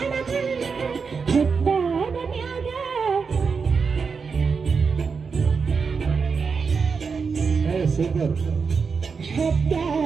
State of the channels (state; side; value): quieter; left; 5.3 dB